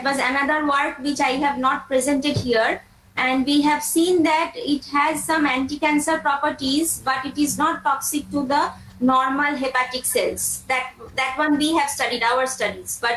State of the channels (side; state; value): both; identical; correlation 1.00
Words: was another work which I have not presented here, and we have seen that it has some anti-cancer properties, but it is not toxic to the normal hepatic cells. That one we have studied, our studies,